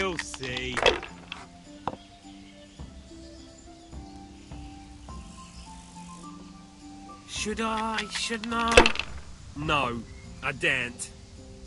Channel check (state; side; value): identical; both; correlation 1.00